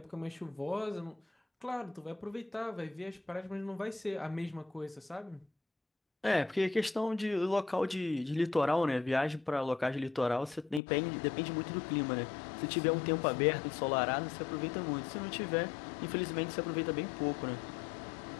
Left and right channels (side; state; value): right; drops out; at 10.8 s